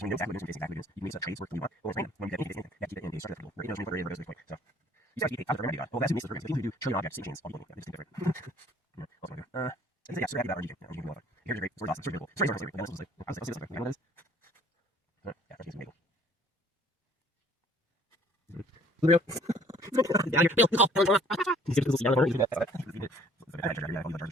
when you know exactly what it is, exactly what it is, you can make trades work the way you want. Or it's random. When you get anything, you have to keep it in a starter field. Right? You know, what goes this way. So you start to keep out of the well, that's who makes the programs. The people who do trillion objects, same chains, all people. Yeah, they just think different. Yeah. Also, yeah, so happy about Rngking. Rngking is awesome. Here's great. It's awesome. It's really cool. Stories are great. And also, like, I'll see this. You know what it is? Yeah, Rngking's amazing. Blue. Down here. Bill. He's going to see down the corner. That's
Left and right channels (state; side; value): normal; both; correlation 0.56